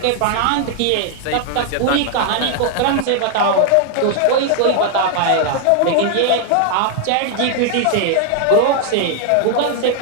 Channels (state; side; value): different; both; correlation 0.00